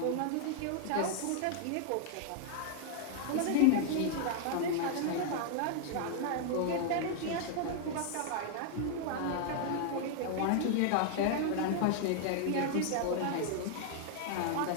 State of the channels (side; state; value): both; different; correlation 0.00